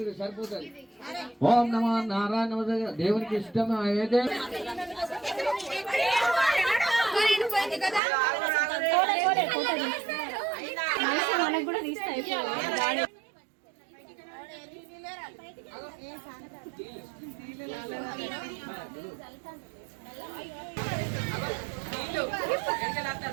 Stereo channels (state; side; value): drops out; left; at 8.0 s